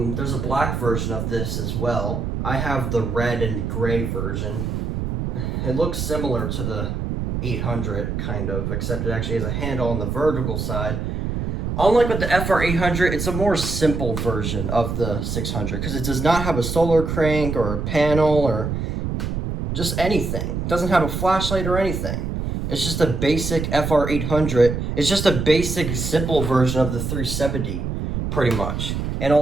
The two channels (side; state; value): right; noise; rumble, 3 dB below the sound